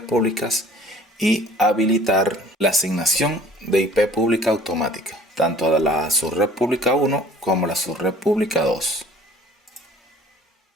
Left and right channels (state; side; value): normal; both; correlation 0.50